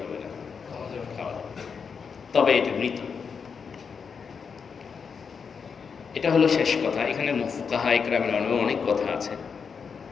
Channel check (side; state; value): right; quieter; 6.0 dB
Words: হবে না? খাওয়া যাবে। তবে এটা মৃত। এটা হলো শেষ কথা। এখানে ফুকাহা ইকরামের অনেক কথা আছে।